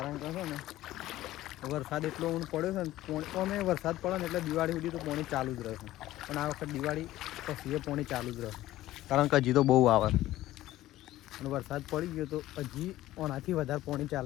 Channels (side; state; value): right; quieter; 15.3 dB